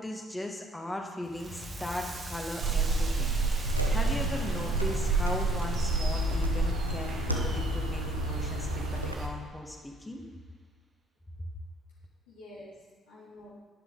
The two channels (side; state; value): both; normal; correlation 0.60